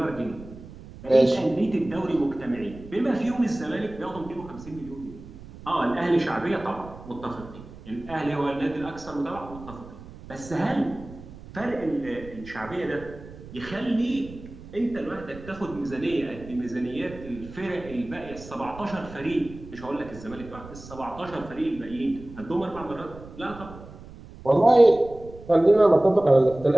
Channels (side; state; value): right; noise; rumble, 16 dB below the sound